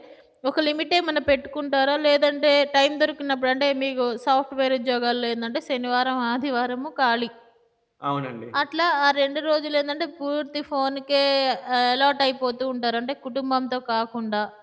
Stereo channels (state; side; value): identical; both; correlation 1.00